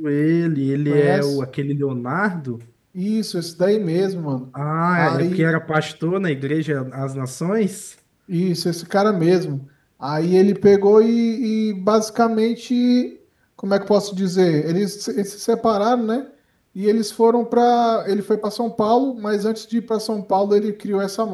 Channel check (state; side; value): identical; both; correlation 1.00